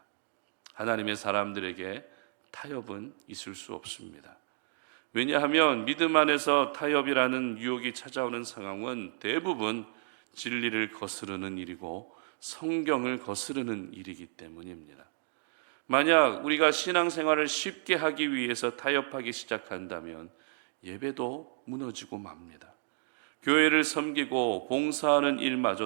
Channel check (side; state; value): left; silent; digital silence